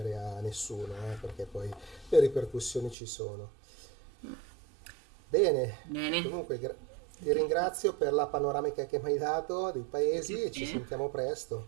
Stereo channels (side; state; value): left; drops out; at 3.0 s